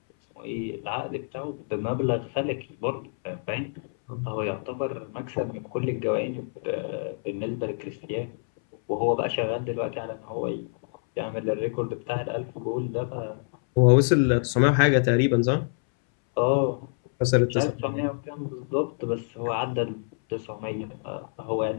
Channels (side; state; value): right; silent; 60 dB below the other